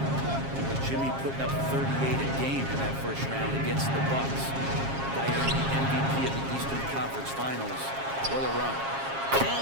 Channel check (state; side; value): late; left; 7.4 ms